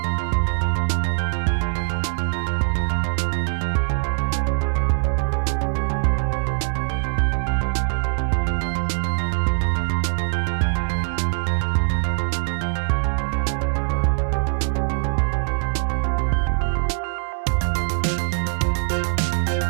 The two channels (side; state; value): left; silent; digital silence